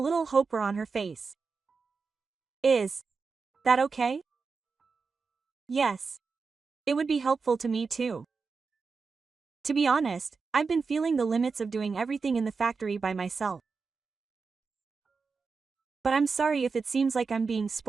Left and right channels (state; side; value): quieter; left; 4.8 dB